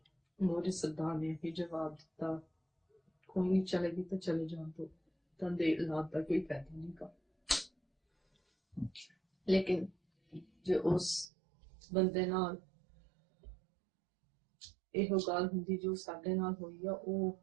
ਮੋਦੀ ਸਰਦਾਰ ਨੇ ਹੀ ਜਵਾਬ ਦਿੱਤਾ ਕੋਈ ਨਹੀਂ ਚਲੇਗੀ ਤਾਂ ਚਲੇ ਜਾਣ ਤੋਂ ਤਾਂ ਦੇ ਇਲਾਜ ਦਾ ਕੋਈ ਫਾਇਦਾ ਨਹੀਂ ਗਾ ਲੇਕਿਨ ਜੇ ਉਸ ਬੰਦੇ ਨਾਲ ਇਹੋ ਗੱਲ ਹੁੰਦੀ ਜੋ ਸਾਡੇ ਨਾਲ ਹੋਈ ਆ ਉਹ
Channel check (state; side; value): drops out; left; at 11.2 s